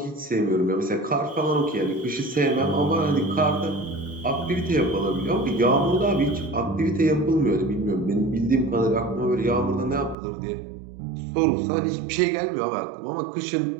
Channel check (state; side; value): drops out; left; at 10.2 s